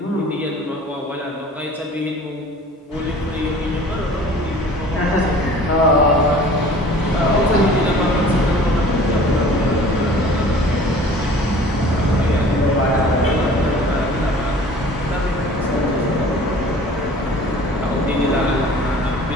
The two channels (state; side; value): normal; both; correlation 0.47